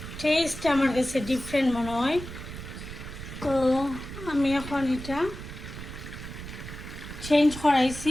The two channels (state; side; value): noise; right; rumble, 10 dB below the sound